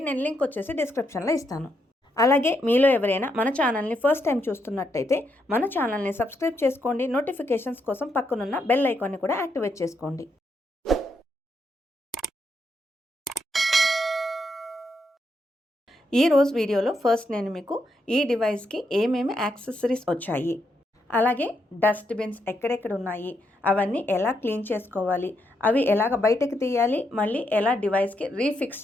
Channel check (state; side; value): normal; both; correlation 0.79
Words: నేను లింక్ వచ్చేసి డిస్క్రిప్షన్లో ఇస్తాను. అలాగే మీలో ఎవరైనా మన ఛానల్ని ఫస్ట్ టైం చూస్తున్నట్టయితే మన ఛానల్ని సబ్స్క్రైబ్ చేసుకోండి. నోటిఫికేషన్స్ కోసం పక్కనున్న బెల్ ఐకాన్ని కూడా యాక్టివేట్ చేసుకోండి. ఈ రోజు వీడియోలో ఫస్ట్ నేను మీకు ఈ డివైస్కి ఏమేమి యాక్సెసరీస్ వచ్చాయి, అలాగే డస్ట్బిన్స్ ఎక్కడెక్కడ ఉన్నాయి, అవన్నీ ఎలా క్లీన్ చేసుకోవాలి, అవి ఎలాగ బయటకు తీయాలి, మళ్ళీ ఎలా డివైస్కి రీఫిక్స్